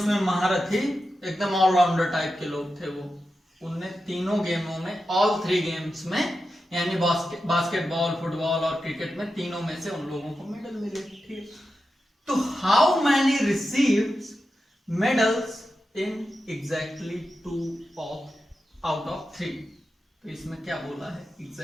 महारथी, एकदम ऑलराउंडर टाइप के लोग थे वो, उनने तीनों गेमों में, ऑल 3 गेम्स में, यानी बास्केटबॉल, फुटबॉल और क्रिकेट में, तीनों में से उन लोगों को मेडल मिले, ठीक। तो how many received medals in exactly 2 out of 3, तो इसमें क्या बोला है,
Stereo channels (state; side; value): normal; both; correlation 0.90